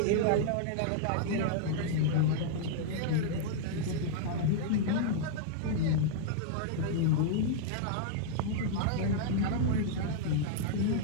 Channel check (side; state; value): both; different; correlation -0.01